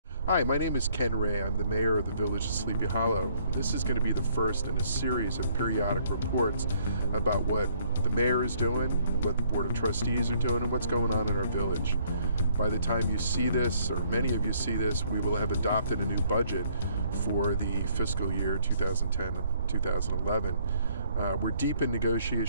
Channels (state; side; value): inverted; both; correlation -0.65